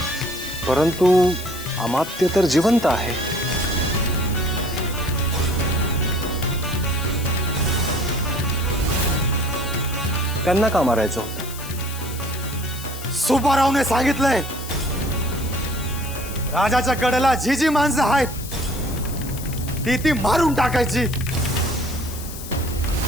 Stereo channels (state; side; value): noise; left; hiss, 12 dB below the sound